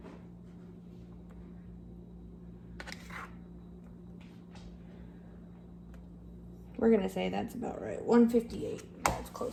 We're gonna say that's about right. 158. That's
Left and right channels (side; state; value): both; identical; correlation 1.00